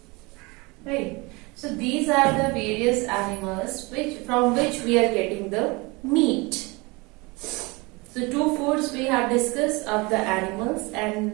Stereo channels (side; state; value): left; quieter; 25.8 dB